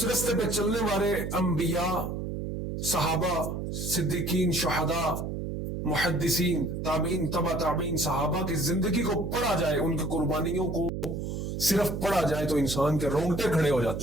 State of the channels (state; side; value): noise; right; hum, 4 dB below the sound